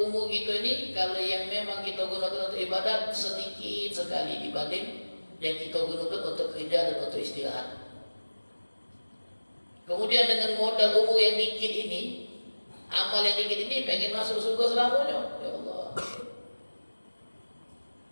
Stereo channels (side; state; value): both; inverted; correlation -1.00